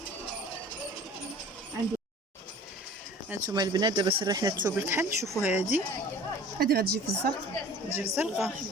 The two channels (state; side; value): normal; both; correlation 0.45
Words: هانتوما البنات دابا سرحنا الثوب الكحل. شوفوا هذه غتجي في الزرق. تجي الزرقاء.